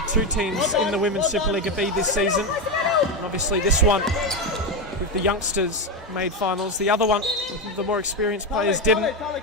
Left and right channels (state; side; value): normal; both; correlation 0.11